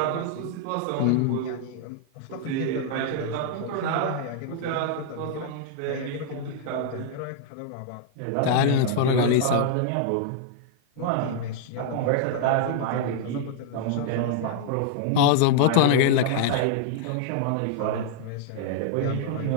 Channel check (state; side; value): different; both; correlation -0.01